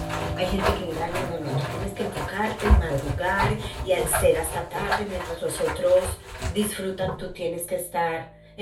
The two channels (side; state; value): both; identical; correlation 1.00